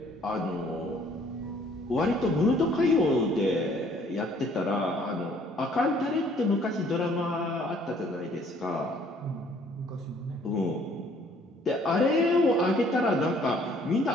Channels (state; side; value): normal; both; correlation 0.60